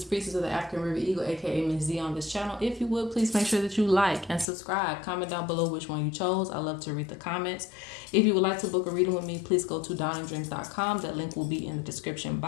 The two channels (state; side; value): drops out; right; at 4.5 s